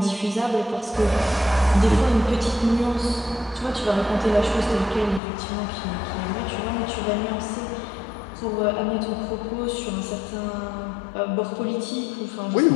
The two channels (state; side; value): drops out; right; at 5.2 s